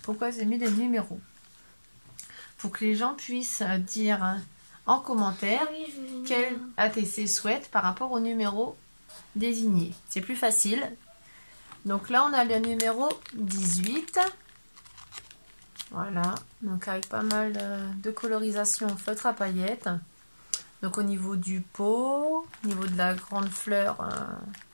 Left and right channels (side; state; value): both; inverted; correlation -1.00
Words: Pourquoi j'ai mis des numéros? Pour que les gens puissent dire en commentaire quel ATC souhaitent par rapport au numéro désigné. C'est plus facile. Donc là on a le numéro 18. Voilà, donc avec pas mal de colorisation feutre à paillettes. Donc au niveau du pot, au niveau de la grande fleur